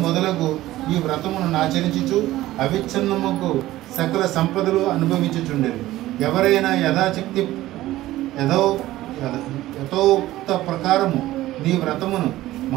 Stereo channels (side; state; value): left; quieter; 15.8 dB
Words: మొదలగు ఈ వ్రతమును ఆచరించుచు అవిచ్ఛిన్నముకు సకల సంపదలు అనుభవించుచుండెను. ఎవరైనా యథాశక్తి యథోక్త ప్రకారము నీ వ్రతమును